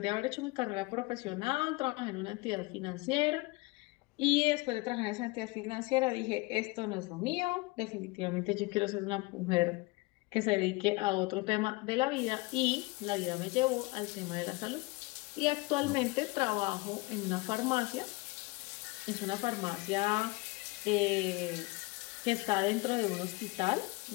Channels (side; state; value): right; quieter; 24.1 dB